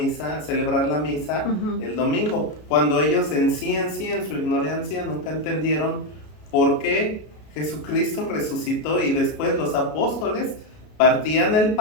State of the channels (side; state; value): right; late; 33 ms